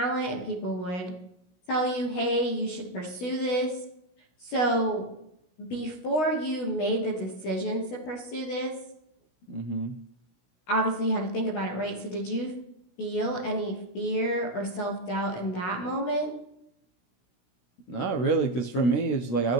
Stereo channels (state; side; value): late; right; 16 ms